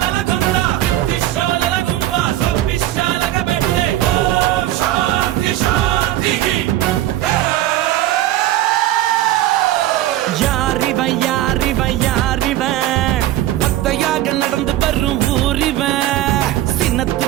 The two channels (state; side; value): quieter; left; 14.1 dB